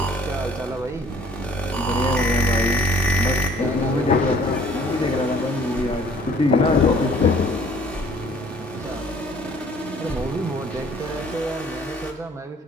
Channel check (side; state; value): both; normal; correlation 0.56